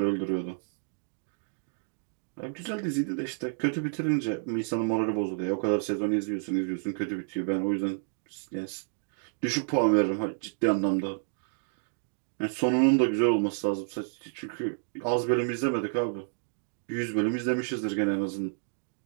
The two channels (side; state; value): left; silent; digital silence